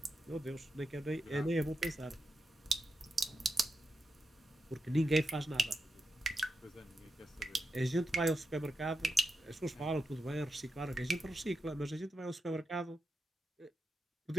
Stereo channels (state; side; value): normal; both; correlation 0.88